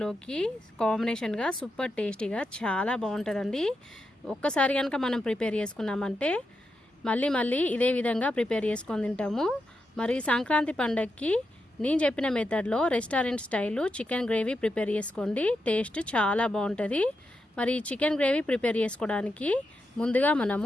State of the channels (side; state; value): both; normal; correlation 0.86